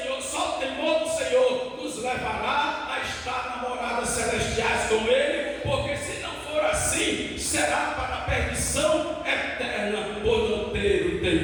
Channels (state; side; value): identical; both; correlation 1.00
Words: só o temor do Senhor nos levará a estar na moradas celestiais com Ele, porque se não for assim, será para a perdição eterna por não ter o